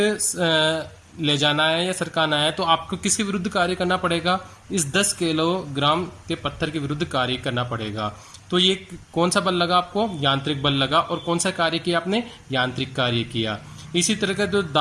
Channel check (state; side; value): identical; both; correlation 1.00